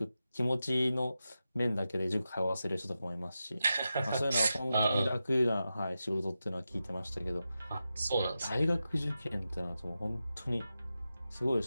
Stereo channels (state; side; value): inverted; both; correlation -0.91